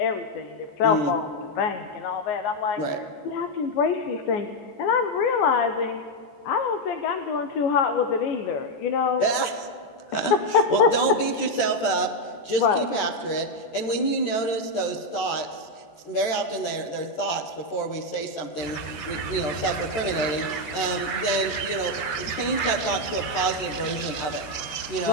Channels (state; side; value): late; right; 13 ms